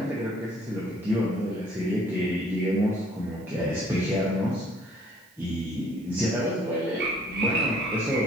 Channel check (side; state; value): right; noise; hiss, 28 dB below the sound